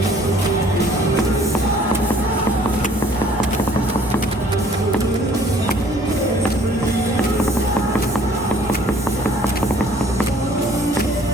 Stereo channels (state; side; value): normal; both; correlation 0.56